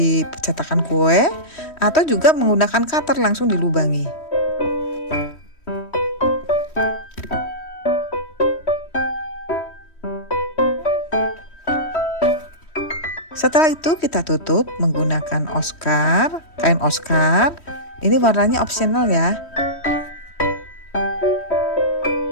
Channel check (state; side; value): late; right; 3.1 ms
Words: cetakan kue atau juga menggunakan cutter langsung dilubangi. Setelah itu kita tutup menggunakan Oscar, kain Oscar. Ini warnanya opsional ya.